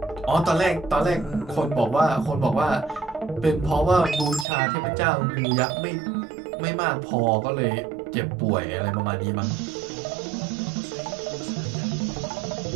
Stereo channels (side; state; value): left; drops out; at 4.5 s